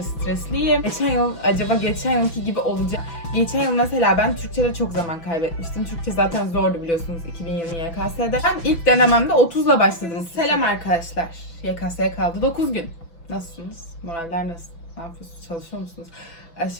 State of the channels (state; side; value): late; right; 6.0 ms